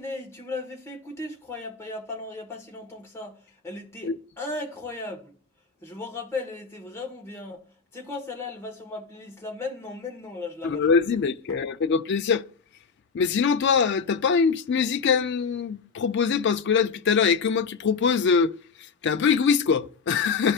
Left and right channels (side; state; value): right; quieter; 5.4 dB